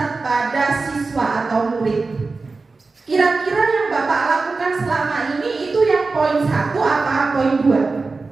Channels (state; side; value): quieter; left; 3.9 dB